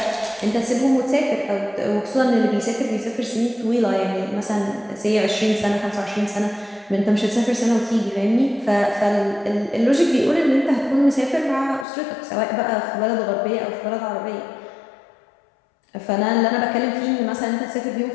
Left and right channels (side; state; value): right; drops out; at 11.9 s